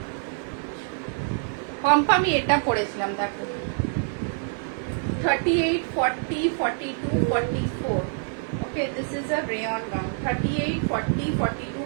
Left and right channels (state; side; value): silent; left; 61 dB below the other